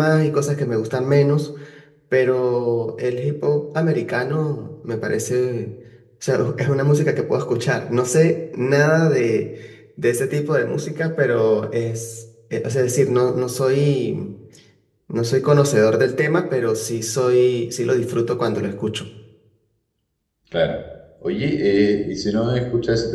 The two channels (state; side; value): identical; both; correlation 1.00